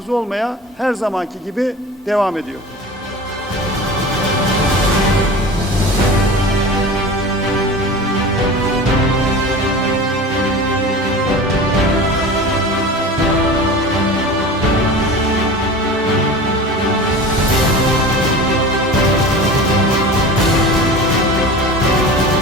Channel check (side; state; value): both; normal; correlation 0.35